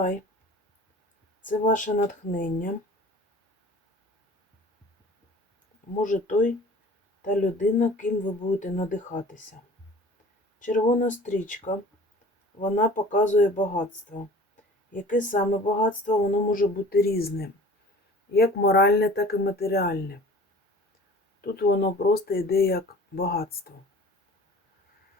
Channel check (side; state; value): both; normal; correlation 0.45